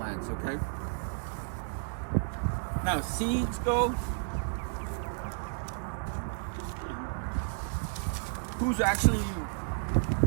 okay? Now seeds go. Who's actually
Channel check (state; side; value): silent; left; digital silence